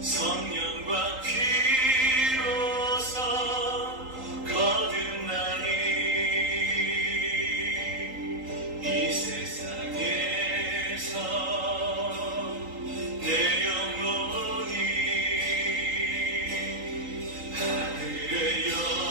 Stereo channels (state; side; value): late; left; 3.8 ms